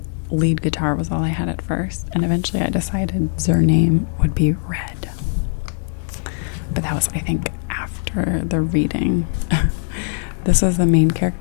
lead guitar was all I had at first, and eventually I decided their name would be Red. But that was, I think, after the reading. This was the main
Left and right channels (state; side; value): silent; right; 66 dB below the other